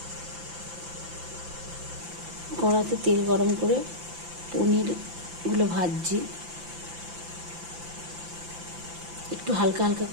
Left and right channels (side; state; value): left; late; 5.8 ms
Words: কড়াতে তেল গরম করে পনিরগুলো ভাজছি, একটু হালকা হালকা